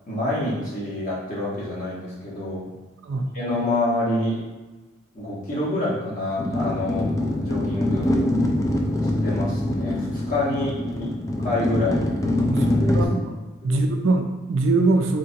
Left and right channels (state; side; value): normal; both; correlation 0.70